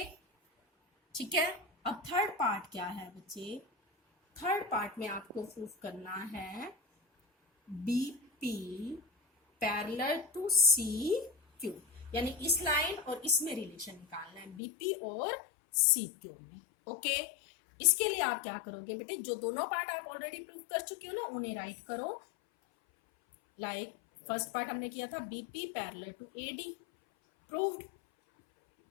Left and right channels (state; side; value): drops out; right; at 14.6 s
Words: ठीक है. अब थर्ड पार्ट क्या है बच्चे? थर्ड पार्ट में आपको प्रूफ करना है BP पैरेलल टू CQ, यानी इस लाइन और इसमें रिलेशन निकालना है, BP और CQ में. ओके, इसके लिए आप क्या करोगे बेटे? जो दोनों पार्ट आप ऑलरेडी प्रूफ कर चुके हो ना, उन्हें राइट करो. लाइक फर्स्ट पार्ट हमने किया था BP parallel to AD, proved.